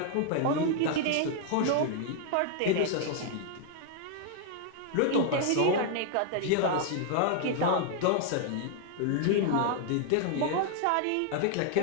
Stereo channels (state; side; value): different; both; correlation 0.00